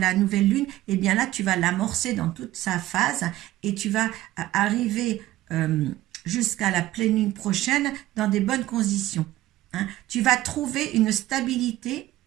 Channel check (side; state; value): left; quieter; 15.6 dB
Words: nouvelle lune, eh bien là, tu vas l'amorcer dans toute sa phase et tu vas arriver jusqu'à la pleine lune prochaine dans des bonnes conditions. Hein? Tu vas trouver une stabilité